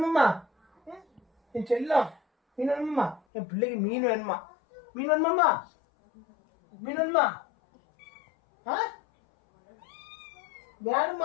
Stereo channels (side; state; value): right; drops out; at 3.2 s